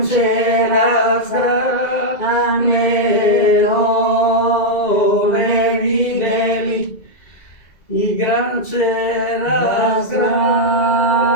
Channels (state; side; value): late; right; 2.0 ms